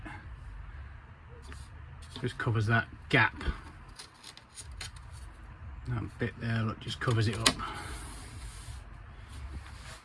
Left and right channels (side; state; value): both; identical; correlation 1.00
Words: Just covers that gap. That bit there, look, just covers it up.